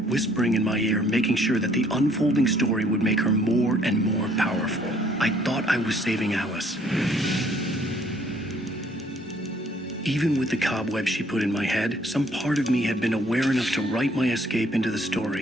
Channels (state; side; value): normal; both; correlation 0.63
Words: whispering in my ear, making sure that the unfolding story would make her more and more powerful. I thought I was saving Alice. Even with the cobwebs she put in my head, some part of me had been aware enough to write my escape into the